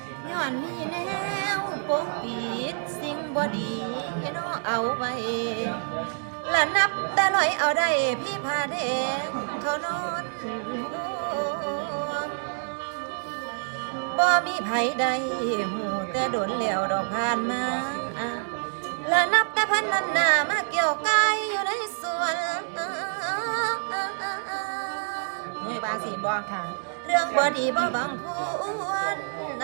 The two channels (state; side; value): silent; left; digital silence